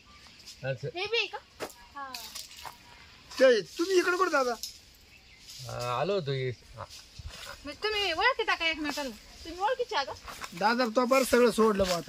असं हे बी आहे का? हा ते तुम्ही इकडे कुठे दादा? आलो होतो मग तुम्ही ओळखीता का एकमेकाला? तुम्ही ओळखीचे आहे का? दादा तो बरं सगळं सोडलं बा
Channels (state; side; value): identical; both; correlation 1.00